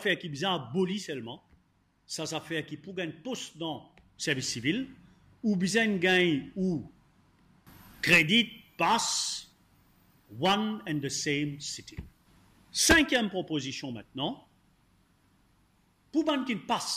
qui est bien abolie seulement, ça fait qui pour gagner poste dans le service civil, ou bien gagne ou crédit passe one and the same city. Cinquième proposition maintenant, pour ban qui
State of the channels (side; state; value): both; identical; correlation 1.00